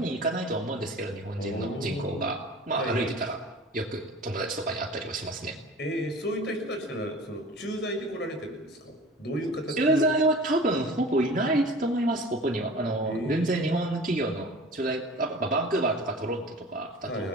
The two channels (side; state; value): both; normal; correlation 0.40